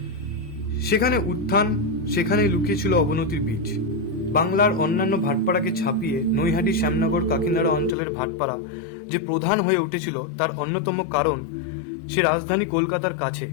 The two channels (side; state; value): right; drops out; at 8.0 s